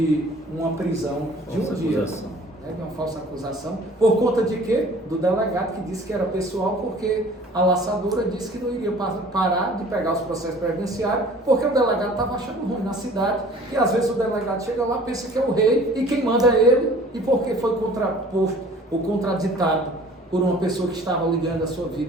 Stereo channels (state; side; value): normal; both; correlation 0.49